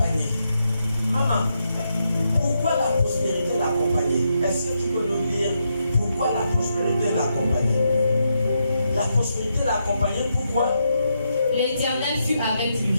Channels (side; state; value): both; inverted; correlation -0.81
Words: Maman, pourquoi la prospérité l'accompagnait? Est-ce que tu peux nous dire pourquoi la prospérité l'accompagnait? La prospérité l'accompagnait, pourquoi? L'Éternel fut avec